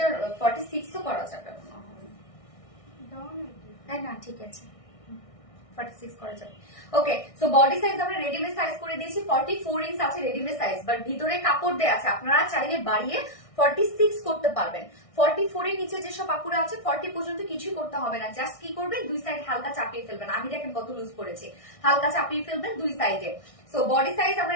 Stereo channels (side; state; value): right; late; 1.6 ms